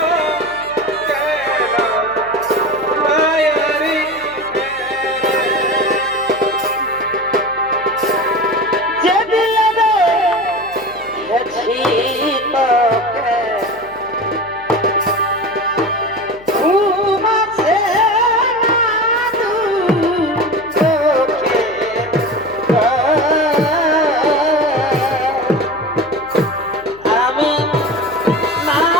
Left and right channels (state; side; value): noise; left; hum, 24 dB below the sound